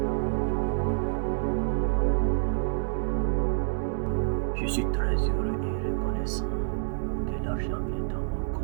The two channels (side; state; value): left; silent; 57 dB below the other